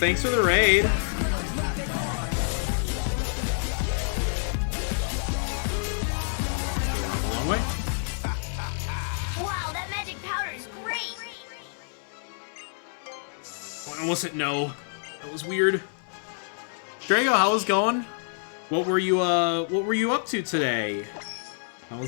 for the raid. A long way. Wow, that magic powder is great. I almost hit no. That was weird. Draco, how was going? What were you up to today? How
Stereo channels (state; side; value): silent; right; digital silence